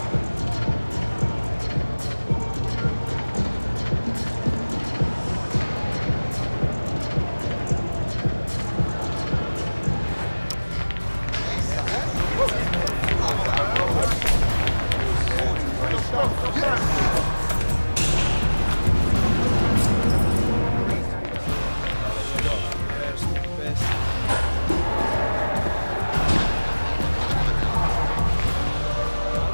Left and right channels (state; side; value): inverted; both; correlation -1.00